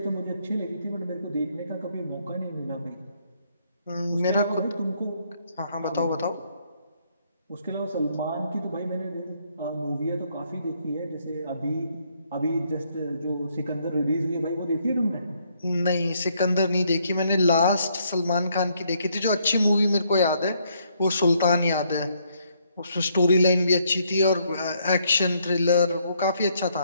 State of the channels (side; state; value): both; inverted; correlation -0.71